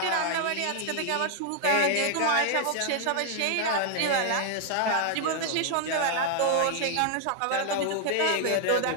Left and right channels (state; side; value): different; both; correlation 0.00